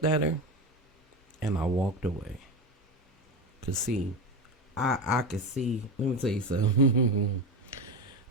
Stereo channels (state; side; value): normal; both; correlation 0.20